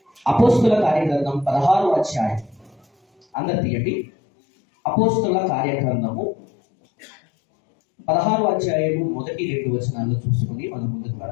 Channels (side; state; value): right; drops out; at 3.2 s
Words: 16వ అధ్యాయం. అందరు తీయండి. అపోస్తుల కార్యగ్రంథము 16వ అధ్యాయము 1-2 వచనాలను చూసుకుని మనం ముందుకు